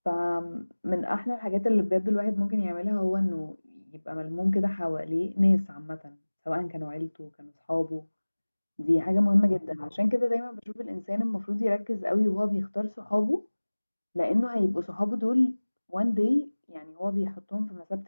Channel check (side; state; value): both; inverted; correlation -1.00